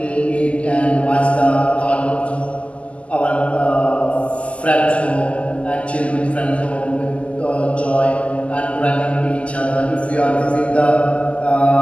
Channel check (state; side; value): late; right; 0.062 ms